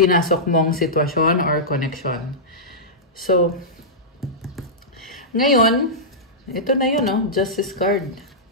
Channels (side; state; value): both; normal; correlation -0.14